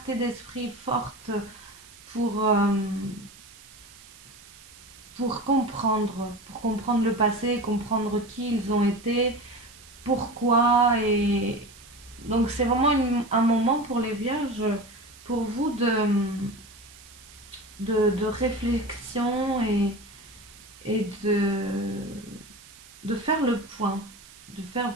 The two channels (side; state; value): right; noise; hiss, 21 dB below the sound